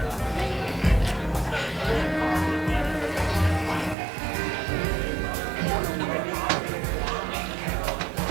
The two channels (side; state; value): left; drops out; at 4.0 s